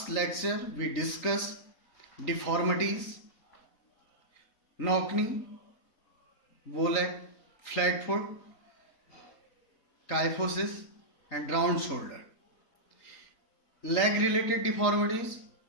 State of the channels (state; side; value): late; right; 3.9 ms